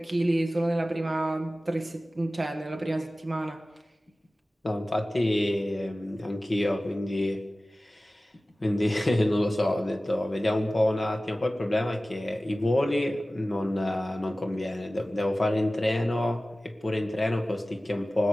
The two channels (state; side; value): normal; both; correlation 0.96